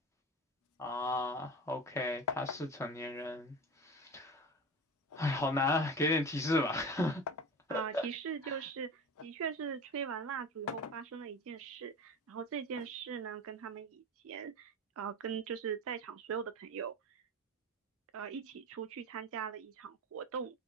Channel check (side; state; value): both; normal; correlation 0.31